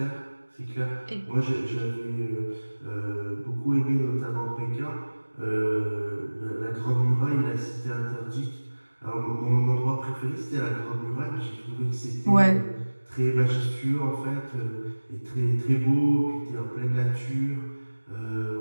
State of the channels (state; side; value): inverted; both; correlation -1.00